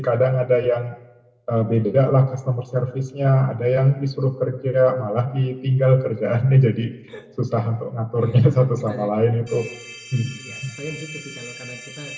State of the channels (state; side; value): identical; both; correlation 1.00